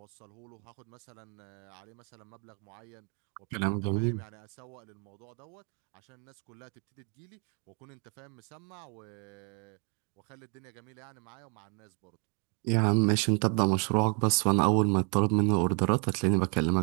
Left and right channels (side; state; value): left; quieter; 36.6 dB